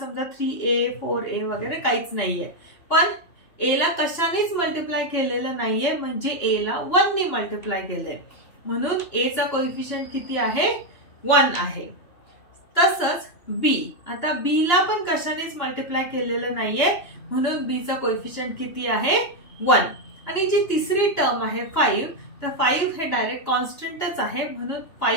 3a 4a वगैरे काहीच नाहीये. पण a ला कशानेच मल्टिप्लाय केलेलं नाहीये, म्हणजे a ला 1 ने मल्टिप्लाय केलंय. म्हणून a चा कोएफिशिएंट किती आहे? 1 आहे. तसंच बी. आता बी ला पण कशानेच मल्टिप्लाय केलेलं नाहीये म्हणून बी चा कोएफिशियंट किती आहे 1. आणि जी तिसरी टर्म आहे 5, तर 5 हे डायरेक्ट कॉन्स्टंटच आहे म्हणून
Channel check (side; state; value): right; late; 2.9 ms